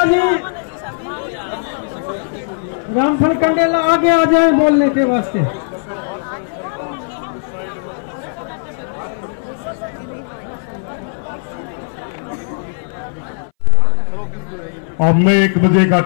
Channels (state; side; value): silent; right; 61 dB below the other